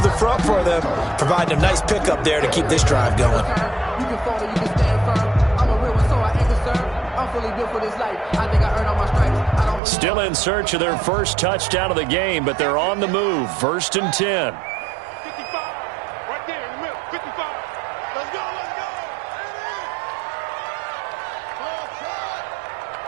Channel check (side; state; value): left; drops out; at 9.8 s